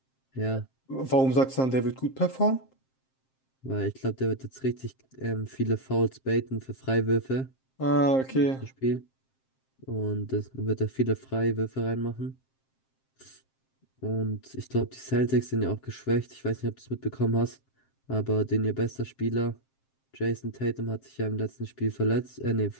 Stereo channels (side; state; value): right; late; 7.6 ms